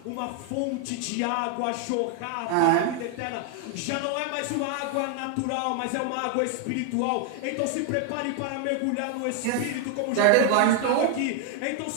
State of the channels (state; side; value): different; both; correlation 0.00